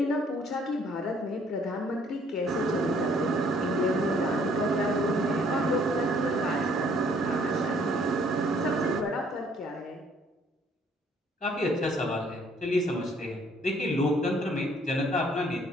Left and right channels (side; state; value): both; normal; correlation 0.62